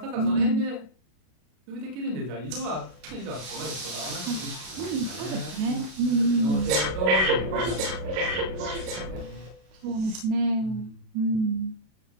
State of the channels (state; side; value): late; left; 32 ms